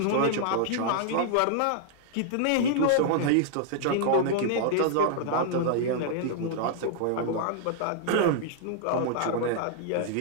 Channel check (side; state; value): both; different; correlation -0.01